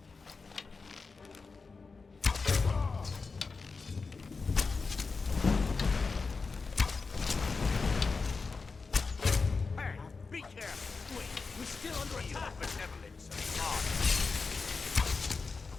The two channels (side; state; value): right; quieter; 4.4 dB